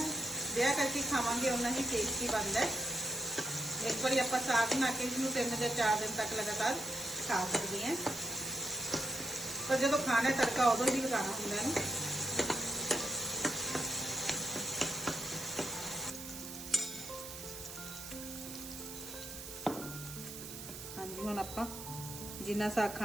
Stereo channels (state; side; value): noise; right; hiss, 10 dB below the sound